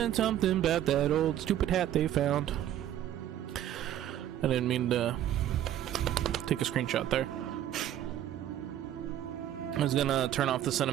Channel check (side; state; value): left; quieter; 11.6 dB